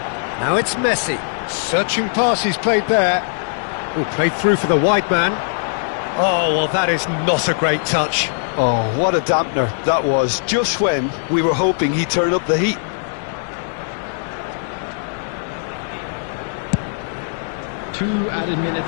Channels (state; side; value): silent; right; digital silence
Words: Now it's Messi. Searching pass he's played there. Oh, played through for the wide man. Oh, well, that is not a great touch. Oh, what a dampener that was, just when we were hoping he'd turn up the heat. Two added